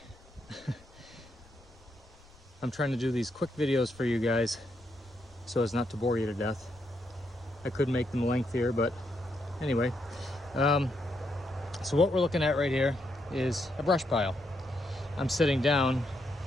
I'm trying to do these quick videos for you guys so as not to bore you to death. I could make them lengthier, but anyway. So what we're looking at right here is a brush pile. I'm sitting down,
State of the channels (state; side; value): noise; left; rumble, 26 dB below the sound